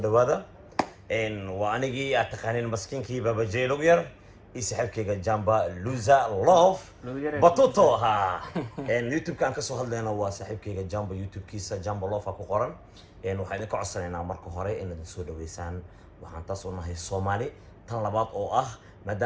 هذا إن وأنيجي أتقانين مسكين كي بابا جي لوغير يسحب كيجا جامبا لوزا لوف بطوطو ها إن يوتيوب كان كسو هالدينا وسحب كيجا جامبا يوتيوب كيسا جامبا لوف أكو قرن إن وحيدين كعصرين عمركو هوري إن السودة ويسان وحنتصونا هي الصومالي طلبات أو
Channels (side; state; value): both; identical; correlation 1.00